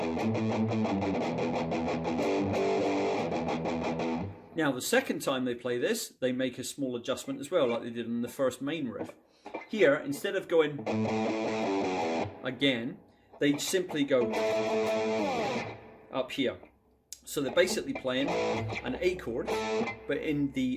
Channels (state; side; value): identical; both; correlation 1.00